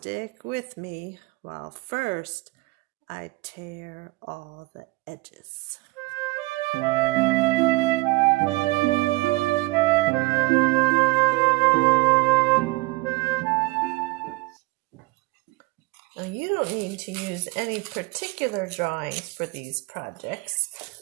with me while first I tear all the edges. Now you don't need to use any particular drawings for these projects.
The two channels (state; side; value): quieter; left; 23.3 dB